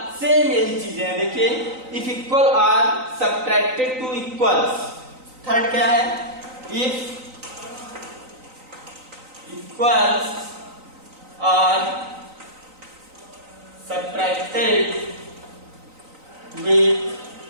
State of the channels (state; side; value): late; left; 3.9 ms